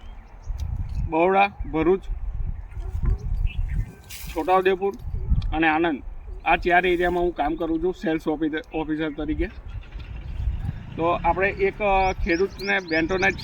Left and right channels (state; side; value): identical; both; correlation 1.00